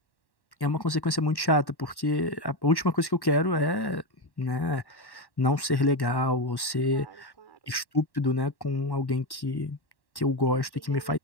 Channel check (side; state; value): right; late; 1.1 ms